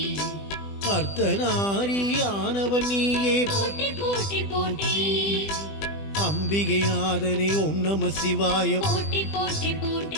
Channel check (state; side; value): late; right; 20 ms